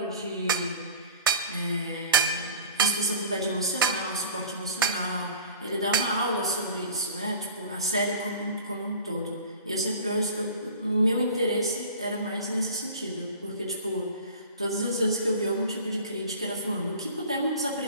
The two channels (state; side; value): inverted; both; correlation -0.41